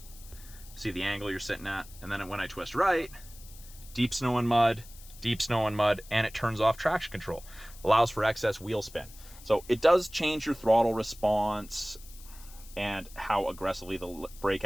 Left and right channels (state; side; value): noise; left; hiss, 20 dB below the sound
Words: See the angle you're sitting at. And then when I twist right, deep snow and mud, and it turns off traction control. Allows for excess wheel spin. So it does change your throttle response and how aggressively the brake